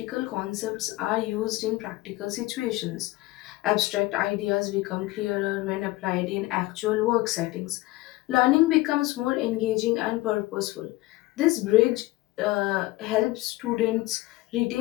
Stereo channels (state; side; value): quieter; right; 19.3 dB